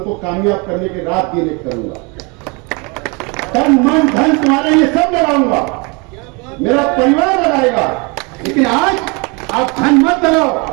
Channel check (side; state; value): left; quieter; 30.1 dB